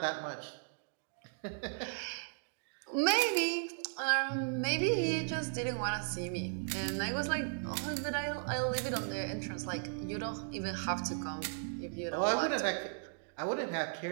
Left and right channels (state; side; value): silent; left; digital silence